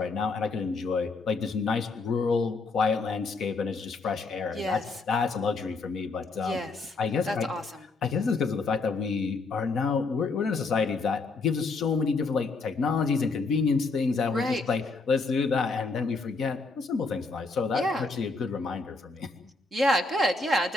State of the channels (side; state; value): right; quieter; 3.8 dB